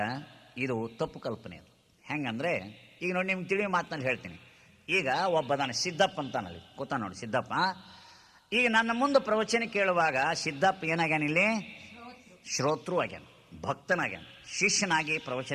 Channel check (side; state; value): both; identical; correlation 1.00